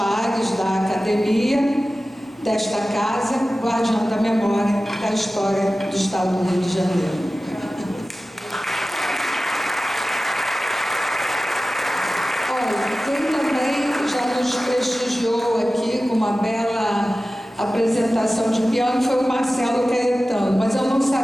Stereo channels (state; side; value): normal; both; correlation 0.95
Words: da academia, desta casa, guardiã da memória da história do Estado do Rio de Janeiro. Olha, quem também já nos prestigiou aqui com uma bela apresentação de piano foi o Marcelo Caetano, mas eu não